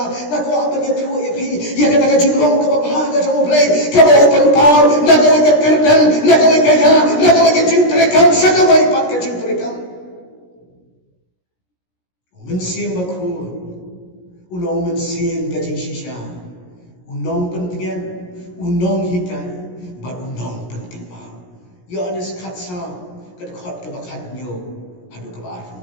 na kwa ban ya thu ya phi ya ka jinglong ka ba ga jong play ka ba open power na ka ka kerdan na ka ka ya na ka ka jintre kam sa ka wai pat ka jintre kam mensim ba khu ulong mensim ka jing shisha unong pentingan unong hikai ba unong penting ba ya anes khatsa kat khot ka bakhat nyo hadu ka ba arfun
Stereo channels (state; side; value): late; right; 17 ms